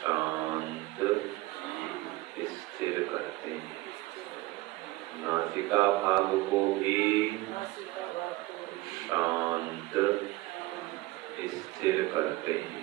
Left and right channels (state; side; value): quieter; left; 18.9 dB